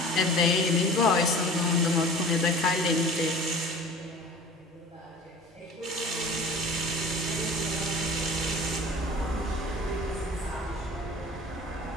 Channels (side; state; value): both; normal; correlation 0.41